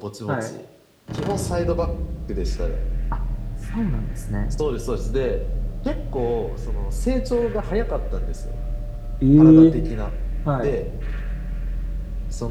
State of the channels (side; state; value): both; identical; correlation 1.00